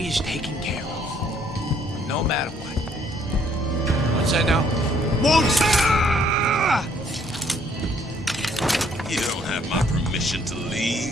is taken care of, no matter what. What's that now? You don't have my permission to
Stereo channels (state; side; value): normal; both; correlation 0.65